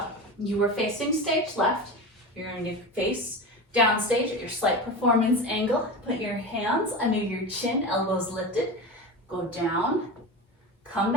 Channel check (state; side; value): normal; both; correlation 0.26